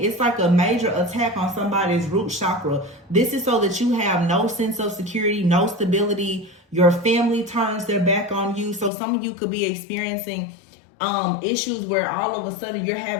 It's like a major attack on somebody's root chakra. This is so that you have no sense of security, no stability. Your family turns their back on you. So some of you could be experiencing issues where all of a sudden you're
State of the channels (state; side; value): drops out; right; at 8.9 s